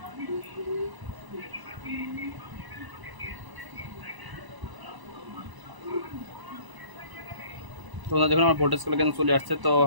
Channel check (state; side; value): late; left; 1.0 ms